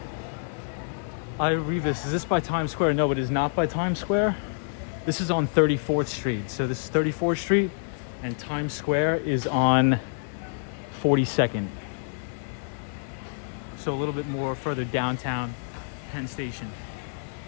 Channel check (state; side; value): silent; right; digital silence